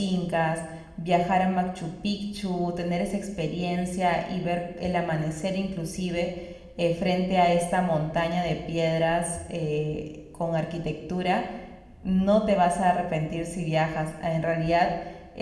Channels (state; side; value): identical; both; correlation 1.00